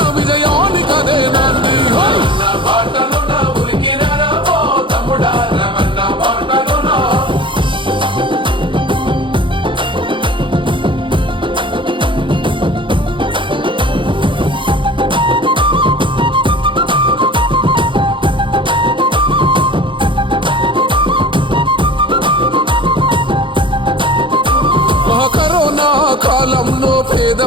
విజయానికి అదే నాంది కాలంలో పేద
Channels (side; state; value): left; late; 0.24 ms